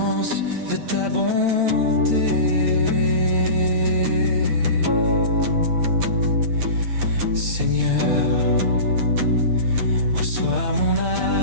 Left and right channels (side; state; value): left; late; 9.0 ms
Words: de ta bonté. Seigneur, reçois mon